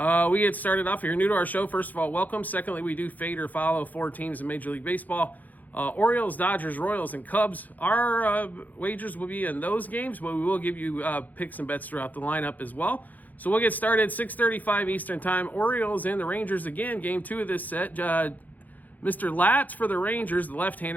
we get started off. If you're new to our show, first of all, welcome. Secondly, we do fade or follow 4 teams in Major League Baseball. Orioles, Dodgers, Royals, and Cubs. Our wagers will be in those games, but we will give you picks and bets throughout the lineup as well. So we'll get started 6:35 Eastern Time. Orioles and the Rangers again. Game 2 of this set. Mr. Latz for the Rangers, the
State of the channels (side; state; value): right; late; 0.081 ms